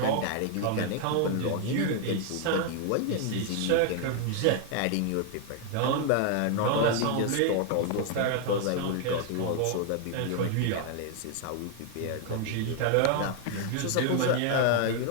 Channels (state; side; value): different; both; correlation 0.00